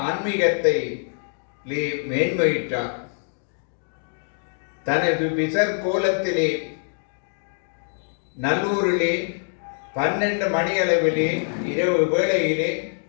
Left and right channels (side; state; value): right; silent; 62 dB below the other